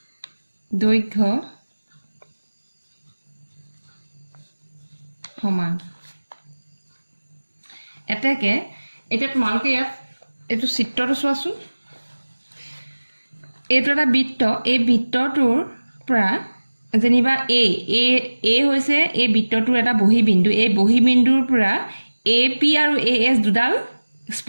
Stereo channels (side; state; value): both; inverted; correlation -1.00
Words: দৈৰ্ঘ্য সমান এতেকে এটা তোমালোকে ইয়াত এটো চিত্ৰটো চোৱাচোন এইটো এটা বৃত্ত এই বৃত্তটোৰ পৰা যেনিবা এ হৈছে এই বৃত্তটোৰ এটা বহিবিন্দু এই বহিবিন্দুৰ পৰা AP আৰু AS দুডাল